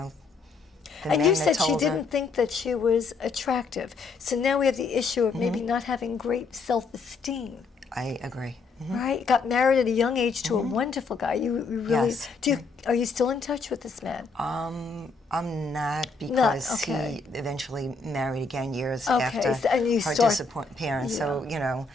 And men you that said she told her- didn't think that she was attractive. So now we have the issue of maybe not having great self-esteem. I agree. Right? Got married at a young age to a wonderful guy. You really Yes. Are you still in touch with this man? I'm not, because okay. he eventually married again years Okay, after so- and you her start- disappearance. So,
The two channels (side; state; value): right; quieter; 4.2 dB